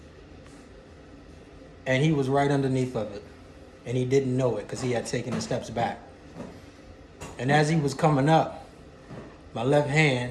and he was right underneath of it, and he didn't know it because he had taken the steps back. And as he was coming up, my left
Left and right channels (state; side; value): identical; both; correlation 1.00